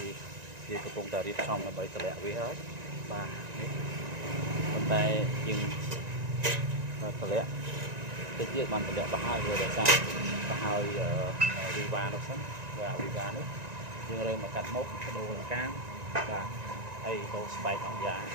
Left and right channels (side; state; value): left; late; 1.9 ms